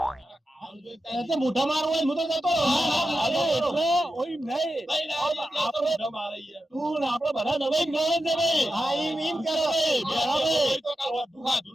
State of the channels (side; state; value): both; normal; correlation 0.90